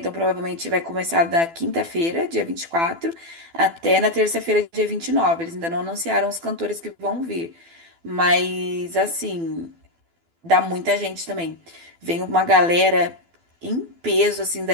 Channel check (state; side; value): late; left; 12 ms